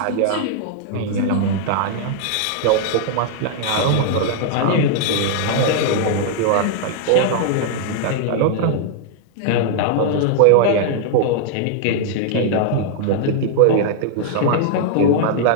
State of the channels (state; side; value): different; both; correlation -0.01